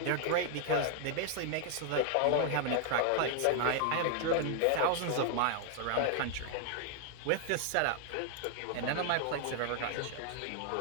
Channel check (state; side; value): different; both; correlation 0.00